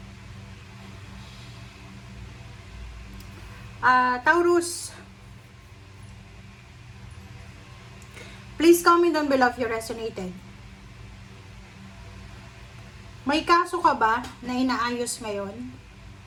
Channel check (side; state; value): both; identical; correlation 1.00